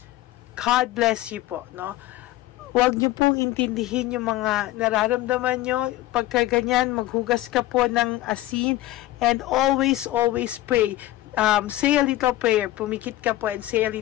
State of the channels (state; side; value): quieter; right; 15.9 dB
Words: God bless you po, no? Huwag niyo pong intindihin yung mga nararamdaman nyo. Pagka ganyan, maghugas ka po ng asin. And always pray. Say a little prayer. Pumikit ka po and say a